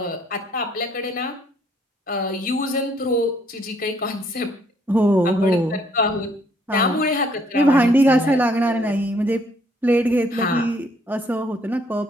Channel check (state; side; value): normal; both; correlation 0.66